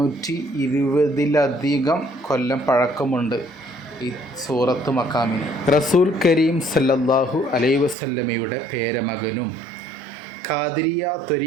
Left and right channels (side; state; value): left; drops out; at 8.0 s